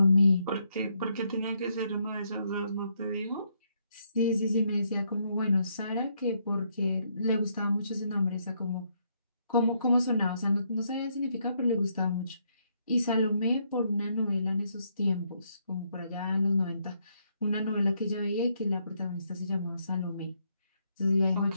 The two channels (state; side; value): inverted; both; correlation -0.74